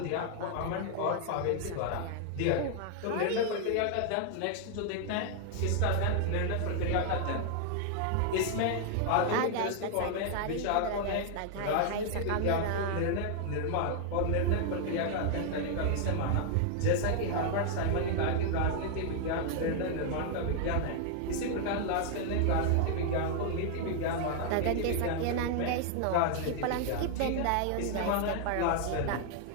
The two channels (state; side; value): different; both; correlation 0.00